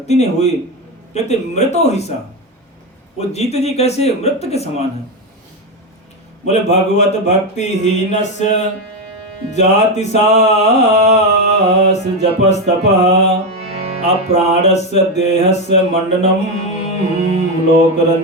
नहीं हुई, कहते मृतो हि सह, वो जीते जी कैसे मृत के समान है। बोले भगवत भक्ति हीनस्य जाति सास जपस्तपः, अप्राणस्य देहस्य मंडनम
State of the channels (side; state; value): both; normal; correlation 0.11